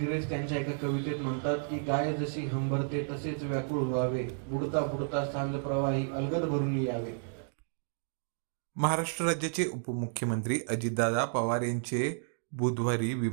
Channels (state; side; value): silent; left; digital silence